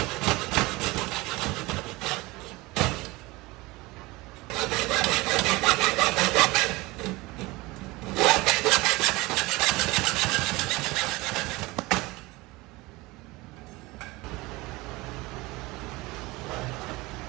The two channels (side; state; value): left; quieter; 22.0 dB